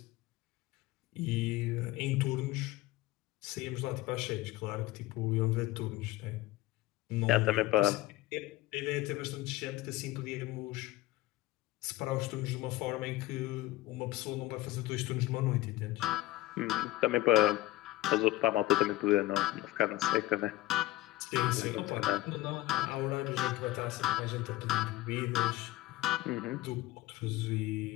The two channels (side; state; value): right; quieter; 17.5 dB